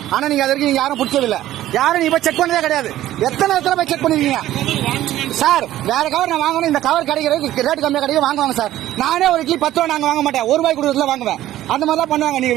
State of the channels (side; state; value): left; quieter; 13.8 dB